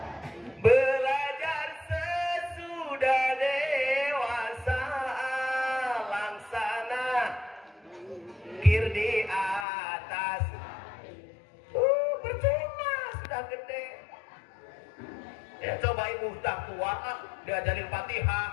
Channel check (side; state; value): right; drops out; at 9.7 s